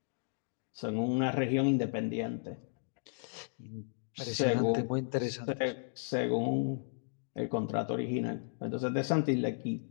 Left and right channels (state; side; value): silent; right; digital silence